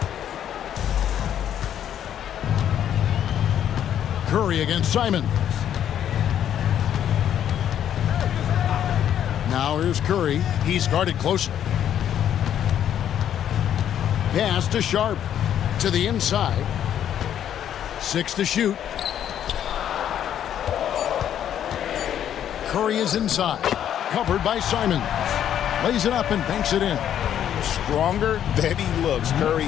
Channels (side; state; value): right; quieter; 10.1 dB